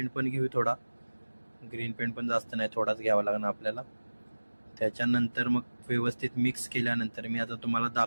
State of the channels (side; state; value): both; inverted; correlation -1.00